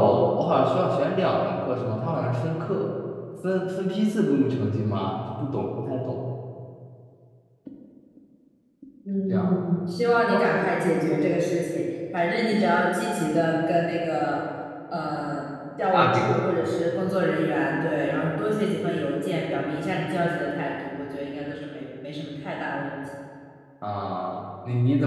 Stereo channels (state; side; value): identical; both; correlation 1.00